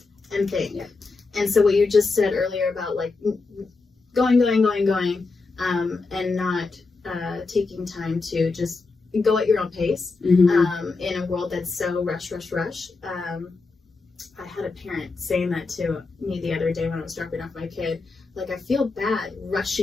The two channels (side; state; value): right; quieter; 4.0 dB